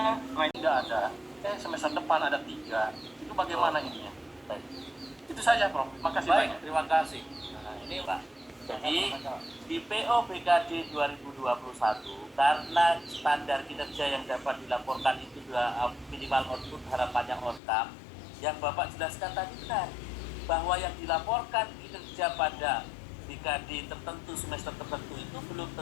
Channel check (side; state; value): right; drops out; at 17.6 s